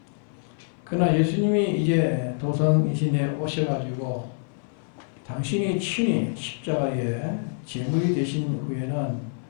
그러나 예수님이 이제 도성이신에 오셔가지고 당신이 친히 십자가에 제물이 되신 후에는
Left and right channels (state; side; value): silent; right; 58 dB below the other